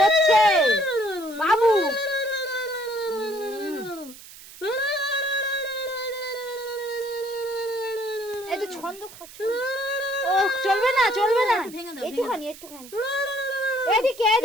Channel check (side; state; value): right; noise; hiss, 18 dB below the sound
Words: বাবু। এই তো ছন্দ খাচ্ছ। ও চলবে না, চলবে না, ভেঙে দাও, একটুখানি এদিকে